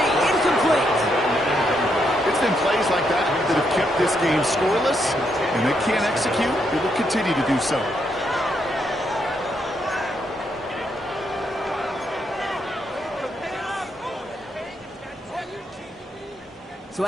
Incomplete. It's been plays like that that have kept this game scoreless, and they can't execute. They will continue to do so. So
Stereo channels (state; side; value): normal; both; correlation 0.78